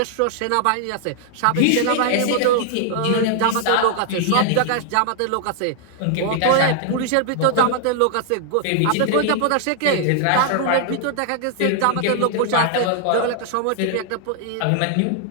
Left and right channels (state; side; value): different; both; correlation 0.00